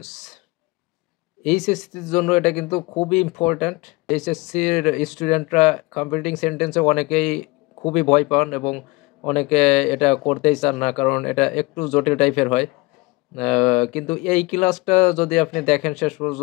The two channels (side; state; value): right; quieter; 23.7 dB